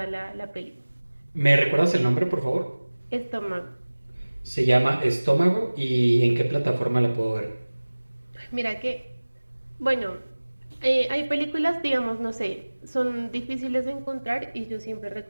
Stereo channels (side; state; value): both; inverted; correlation -1.00